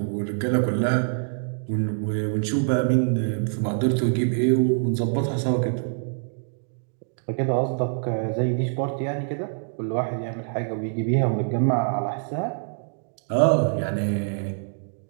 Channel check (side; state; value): left; silent; digital silence